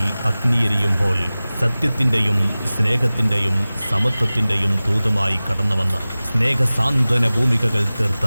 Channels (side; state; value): both; inverted; correlation -0.98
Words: അഗ്നിയെരിയുമ്പോൾ സത്യത്തിന്റെയും സ്നേഹത്തിന്റെയും സമത്വത്തിന്റെയും ദൂതമായി കടന്നുവന്ന് സ്നേഹസാന്ത്വന ഭൂമികകൾ തീർത്ത